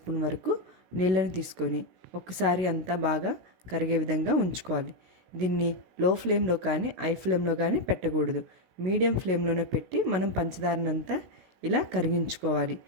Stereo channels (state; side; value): late; left; 17 ms